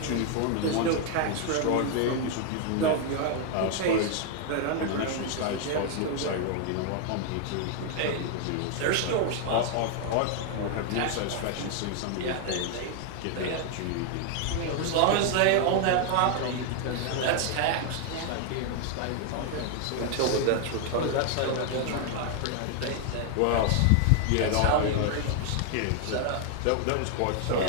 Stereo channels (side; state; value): both; different; correlation 0.00